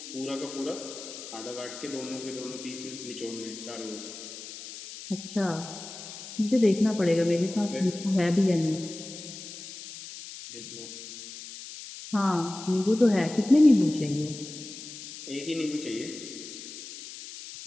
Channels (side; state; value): left; noise; hiss, 12 dB below the sound